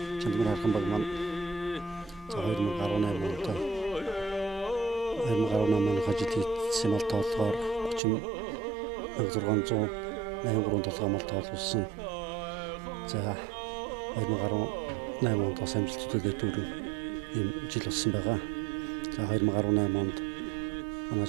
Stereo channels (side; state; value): left; drops out; at 8.0 s